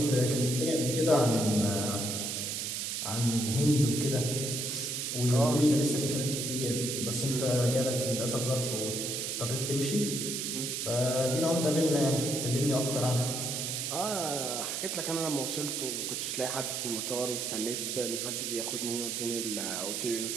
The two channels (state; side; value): noise; right; hiss, 2 dB below the sound